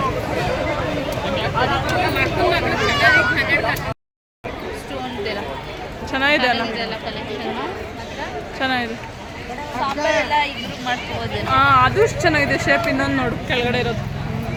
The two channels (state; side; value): identical; both; correlation 1.00